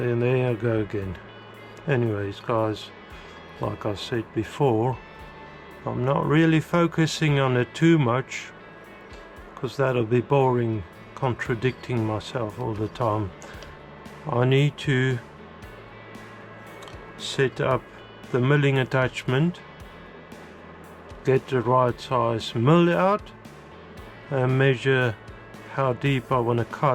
there I go again. Anyways guys, like I said before, I'm not really focusing on it too much, because that'll be boring, contradicting myself all the time. I need to set up the milling attachment, get the right size mill out, and measure how deep I want to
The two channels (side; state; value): both; identical; correlation 1.00